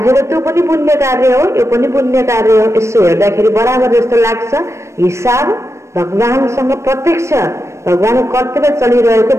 त त्यो पनि पुण्य कार्य हो, यो पनि पुण्य कार्य हो। यसो हेर्दाखेरि बराबर जस्तो लाग्छ। हिसाब भगवानसँग प्रत्यक्ष भगवानको कर्तव्य चलिरहेको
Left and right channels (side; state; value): left; late; 0.13 ms